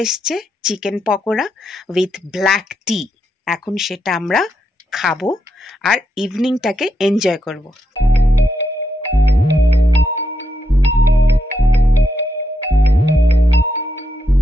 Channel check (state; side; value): normal; both; correlation 0.82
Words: এসছে, চিকেন পকোড়া উইথ ব্ল্যাক টি। এখন সেটা আমরা খাবো আর ইভিনিংটাকে এনজয় করব।